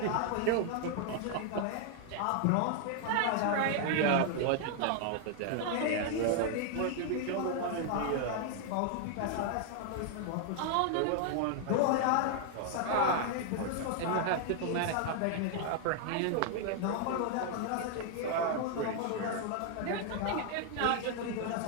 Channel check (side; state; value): both; different; correlation 0.00